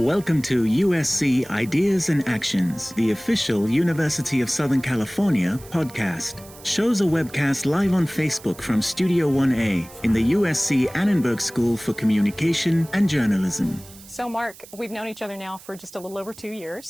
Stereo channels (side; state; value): right; noise; hiss, 20 dB below the sound